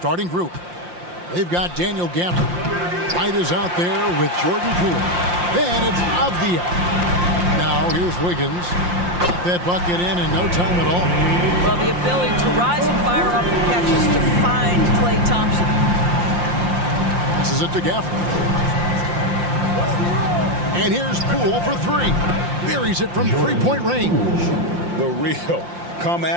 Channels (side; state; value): left; late; 5.7 ms